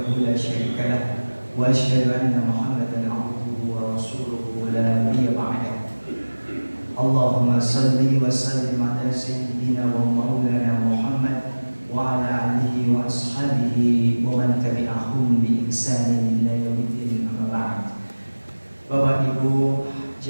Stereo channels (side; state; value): both; inverted; correlation -1.00